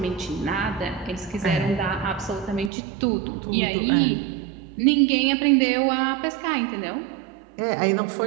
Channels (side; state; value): left; drops out; at 2.7 s